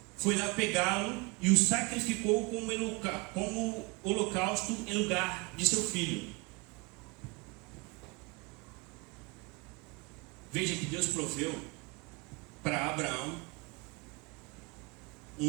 Foi lá pegá-lo e o sacrificou como holocausto em lugar de seu filho. Veja que Deus proveu para Abraão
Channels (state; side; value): quieter; left; 26.9 dB